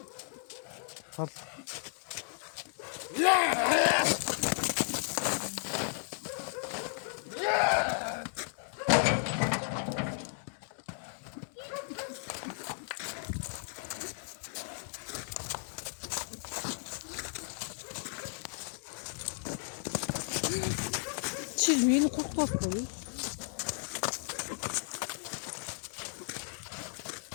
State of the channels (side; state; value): right; silent; 55 dB below the other